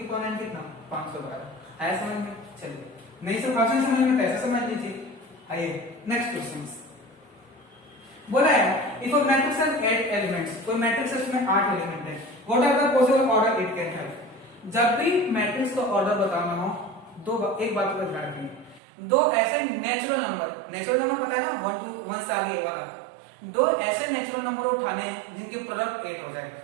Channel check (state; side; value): drops out; left; at 18.8 s